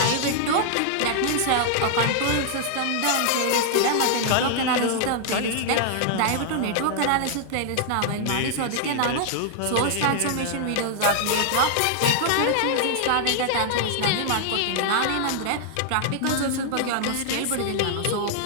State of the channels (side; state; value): both; different; correlation -0.01